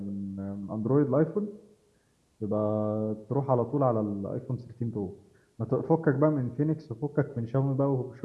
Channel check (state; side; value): identical; both; correlation 1.00